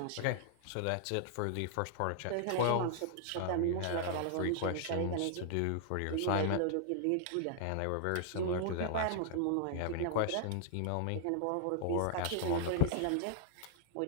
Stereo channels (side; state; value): both; different; correlation -0.01